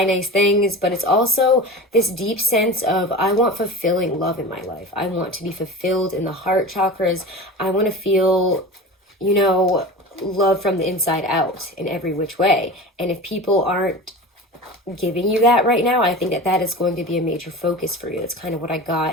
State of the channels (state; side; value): normal; both; correlation 0.32